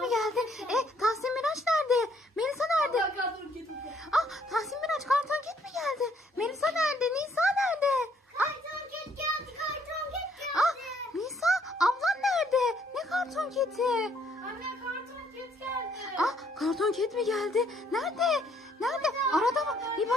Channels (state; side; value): normal; both; correlation 0.67